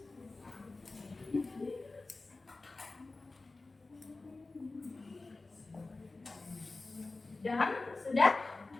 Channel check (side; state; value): right; quieter; 3.4 dB